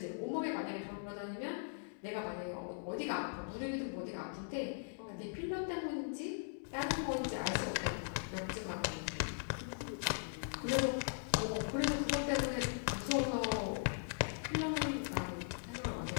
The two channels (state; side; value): silent; right; digital silence